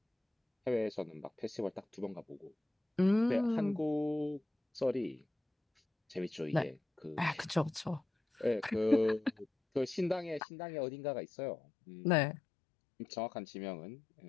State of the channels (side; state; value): right; drops out; at 10.4 s